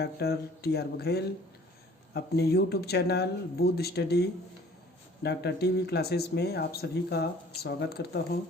टी.आर. बघेल अपने YouTube channel Budh study doctor TV classes में आप सभी का स्वागत करता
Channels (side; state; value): both; normal; correlation 0.52